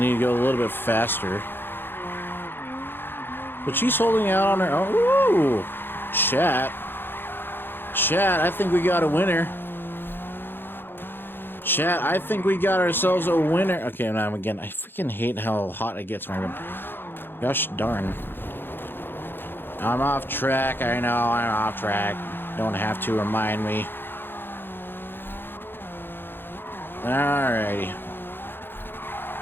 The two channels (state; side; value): late; right; 0.10 ms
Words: to go a little bit faster. But she's holding out on her own. Ooh! Chat. Chat, I think we got a winner. Chat, I think we got ourselves a winner. Okay, now again, I freaking hate how hot it gets in my room. Gosh darn. I'm off track. I know I'm off track. Don't have to remind me. Alrighty.